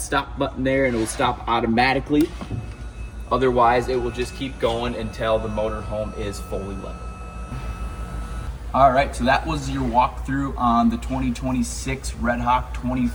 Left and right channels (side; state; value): both; identical; correlation 1.00